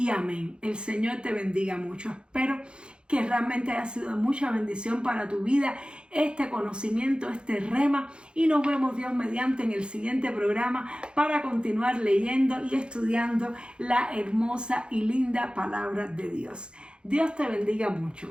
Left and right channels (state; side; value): late; left; 0.054 ms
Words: amén. El Señor te bendiga mucho. Espero que realmente haya sido de mucha bendición para tu vida este conocimiento, este rema, y nos vemos, Dios mediante, en el siguiente programa para continuar leyendo y estudiando la hermosa y linda palabra de Dios. Dios te bendiga mucho.